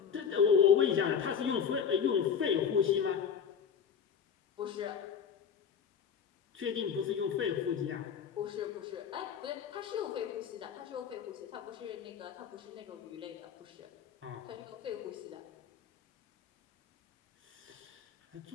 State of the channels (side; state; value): right; quieter; 7.3 dB